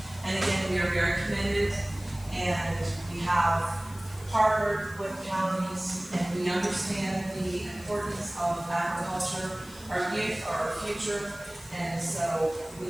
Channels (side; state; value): left; noise; hiss, 20 dB below the sound